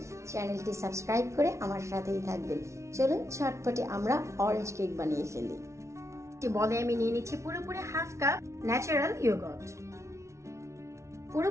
চ্যানেলটি সাবস্ক্রাইব করে আমার সাথেই থাকবেন। চলুন ঝটপটে আমরা অরেঞ্জ কেক বানিয়ে ফেলি। বলে আমি নিয়ে নিচ্ছি পুরোপুরি হাফ কাপ ন্যাচারাল ইয়োগর্ট,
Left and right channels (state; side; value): late; left; 0.14 ms